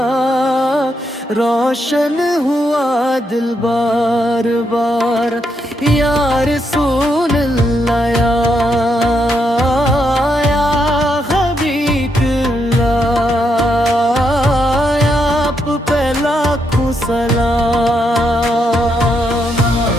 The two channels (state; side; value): normal; both; correlation 0.79